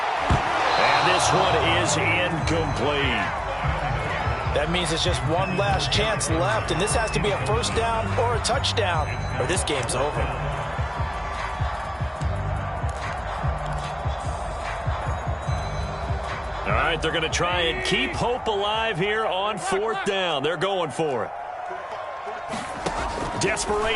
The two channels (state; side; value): identical; both; correlation 1.00